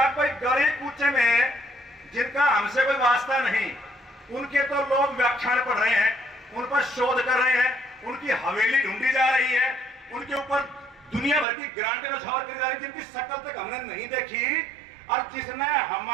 कोई गली कूचे में जिनका हमसे कोई वास्ता नहीं, उनके तो लोग व्याख्यान पढ़ रहे हैं, उन पर शोध कर रहे हैं, उनकी हवेली ढूंढी जा रही है, उनके ऊपर दुनिया भर की ग्रांटें नछावर करी जा रही है, जिनकी शक्ल तक हमने नहीं देखी। और जिसने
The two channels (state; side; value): drops out; left; at 11.5 s